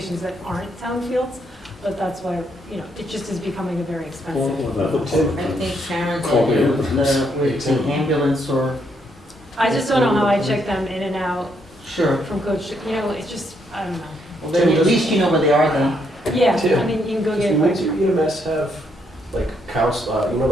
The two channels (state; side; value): normal; both; correlation 0.74